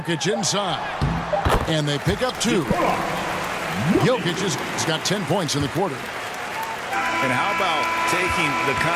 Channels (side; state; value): both; identical; correlation 1.00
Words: inside. And they pick up 2. Jokic has got 10 points in the quarter. And how about taking the